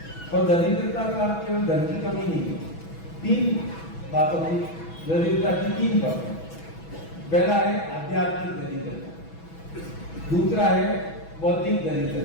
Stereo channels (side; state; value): right; late; 6.1 ms